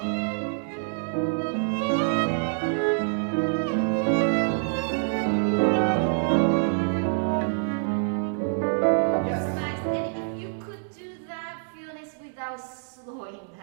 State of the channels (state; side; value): silent; left; digital silence